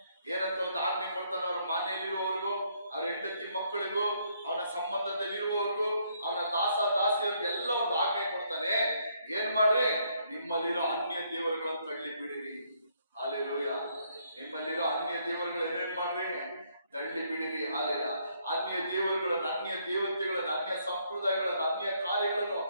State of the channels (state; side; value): inverted; both; correlation -0.70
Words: ಏನಂತ ಒಂದು ಆಜ್ಞೆ ಕೊಡ್ತಾನೆ. ಅವ್ರ ಮನೆಯಲ್ಲಿರುವವರಿಗೂ, ಅವ್ರ ಹೆಂಡತಿ ಮಕ್ಕಳಿಗೂ, ಅವನ ಸಂಬಂಧದಲ್ಲಿರುವವರಿಗೂ, ಅವನ ದಾಸಿಯರಿಗೂ ಮಾಡ್ರಿ, ನಿಮ್ಮಲ್ಲಿರೋ ಅನ್ಯ ದೇವರುಗಳನ್ನು ತಳ್ಳಿ ಬಿಡಿರಿ. ಹಾಲೆಲೂಯ. ನಿಮ್ಮಲ್ಲಿರೋ ಅನ್ಯ ದೇವರುಗಳು ಏನೇನ್ ಮಾಡ್ರಿ, ತಳ್ಳಿ ಬಿಡಿರಿ. ಹಾಲೆಲ್ಲ ಅನ್ಯ ದೇವರುಗಳನ್ನು, ಅನ್ಯ ದೇವತೆಗಳನ್ನು, ಅನ್ಯ ಸಂಪ್ರದಾಯಗಳನ್ನು, ಅನ್ಯ ಕಾರ್ಯಗಳನ್ನು